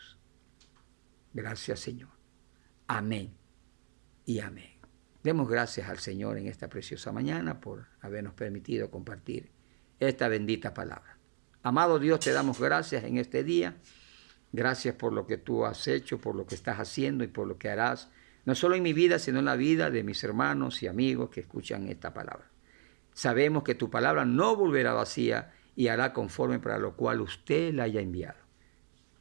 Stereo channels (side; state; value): left; silent; digital silence